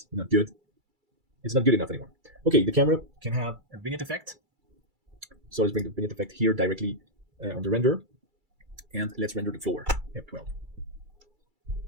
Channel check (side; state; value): left; late; 2.3 ms